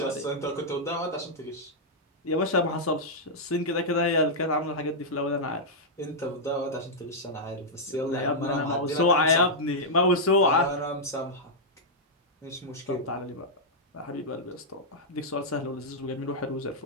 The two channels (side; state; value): both; normal; correlation -0.07